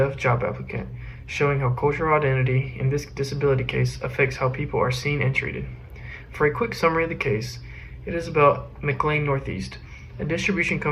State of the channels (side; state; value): both; identical; correlation 1.00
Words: job applicant, showing how cultural identity in this disability case affects how people are seen and treated. For a quick summary of the case, it is about McLean Northeast, a distribution